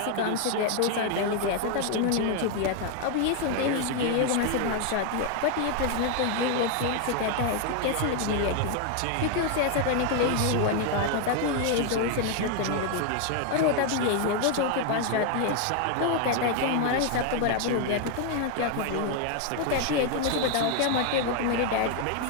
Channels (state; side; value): different; both; correlation 0.01